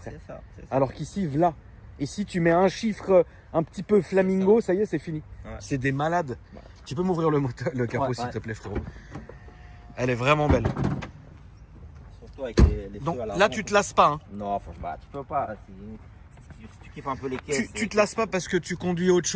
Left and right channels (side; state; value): both; identical; correlation 1.00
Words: C'est ça. Alors qu'ici, voilà. Ici, tu mets un chiffre un petit peu flamingo, ça y est, c'est fini. Ouais. C'est des malades. Ouais. Tu peux m'ouvrir le capot, Ouais, s'il ouais. te plaît, frérot. Elle est vraiment belle. Surtout avec les Donc feux à là, l'avant. tu te lasses pas. Hein. Non, franchement, tu peux pas. Si tu kiffes un peu les caisses. Tu te lasses pas parce que tu conduis autre